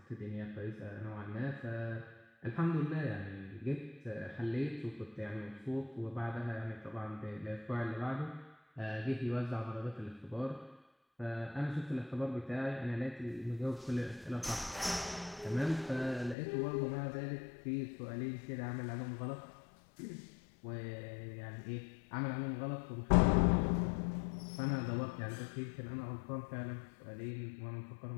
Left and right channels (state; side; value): drops out; right; at 16.4 s